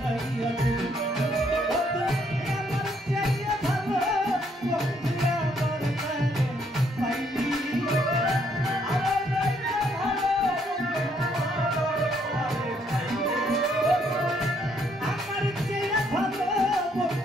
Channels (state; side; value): normal; both; correlation 0.70